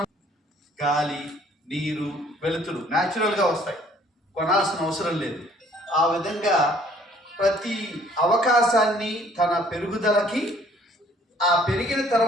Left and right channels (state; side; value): normal; both; correlation 0.59